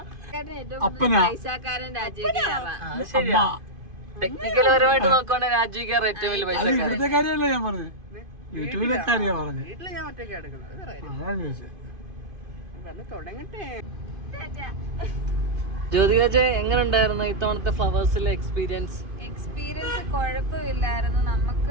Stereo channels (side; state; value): left; late; 2.5 ms